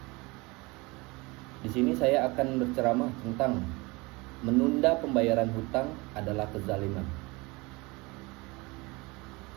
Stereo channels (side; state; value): left; quieter; 24.9 dB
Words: Di sini saya akan berceramah tentang menunda pembayaran hutang adalah kezaliman.